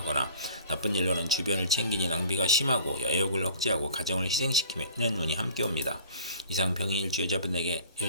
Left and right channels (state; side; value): inverted; both; correlation -0.48